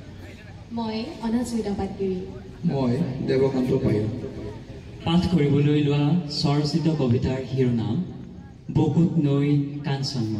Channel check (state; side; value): identical; both; correlation 1.00